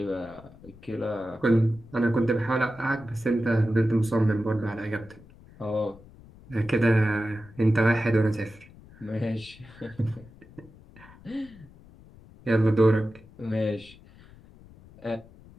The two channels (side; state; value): left; noise; rumble, 22 dB below the sound